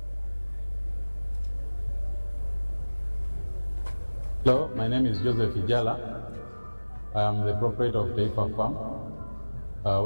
Hello, my name is Joseph Ijala. I am the proprietor of Taifa Farm,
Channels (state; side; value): inverted; both; correlation -1.00